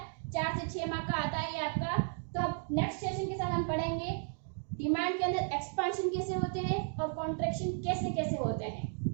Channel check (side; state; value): left; silent; 55 dB below the other